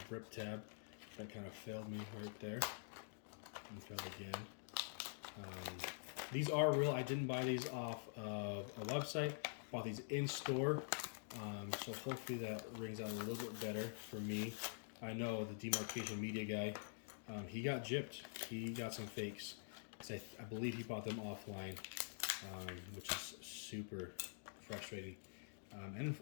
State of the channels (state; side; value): silent; right; digital silence